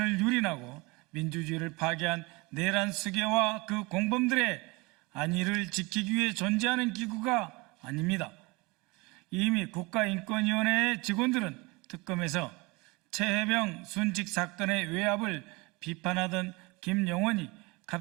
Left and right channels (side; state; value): left; quieter; 25.2 dB